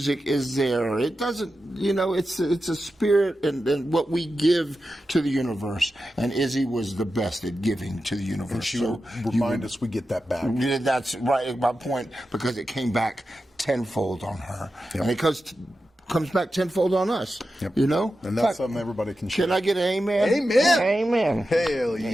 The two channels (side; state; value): both; normal; correlation 0.91